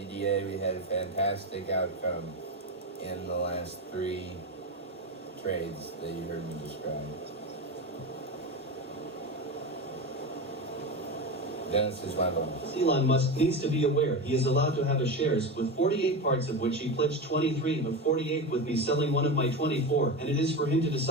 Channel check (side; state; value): both; normal; correlation 0.20